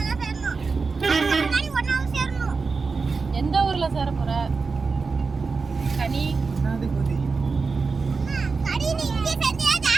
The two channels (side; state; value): left; quieter; 4.5 dB